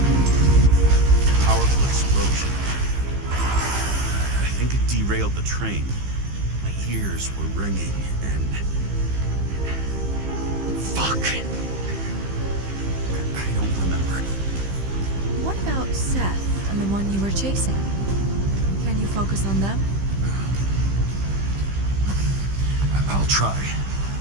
Powerful explosion. I think it derailed the train. My ears were ringing and... Fuck! I don't remember. What about Seth and the one you were chasing? Can you focus on them? I'll try.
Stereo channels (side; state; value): left; late; 15 ms